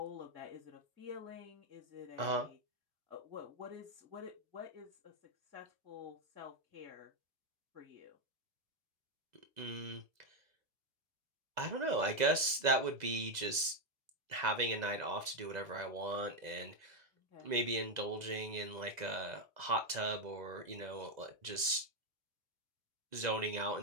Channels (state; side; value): late; left; 2.0 ms